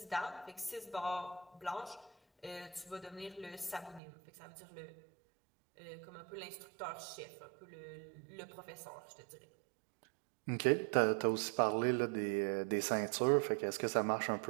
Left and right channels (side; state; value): left; drops out; at 4.0 s